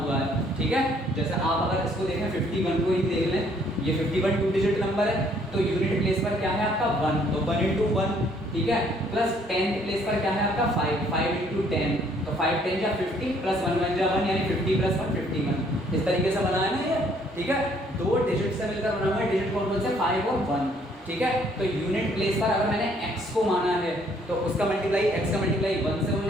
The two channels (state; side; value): normal; both; correlation 0.64